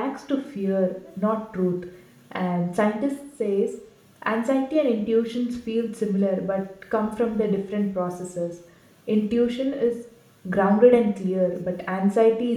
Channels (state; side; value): identical; both; correlation 1.00